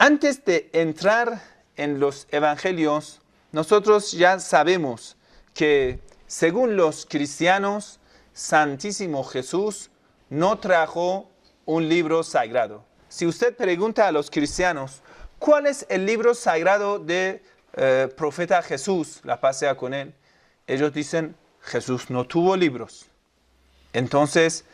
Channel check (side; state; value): both; identical; correlation 1.00